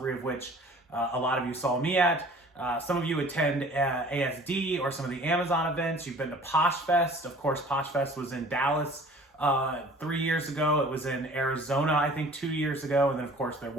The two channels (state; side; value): normal; both; correlation 0.48